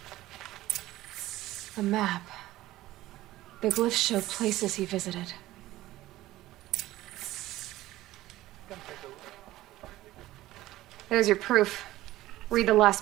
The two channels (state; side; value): quieter; left; 16.2 dB